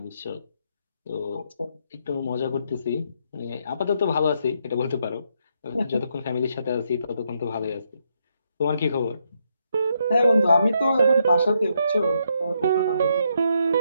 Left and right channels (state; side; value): inverted; both; correlation -0.77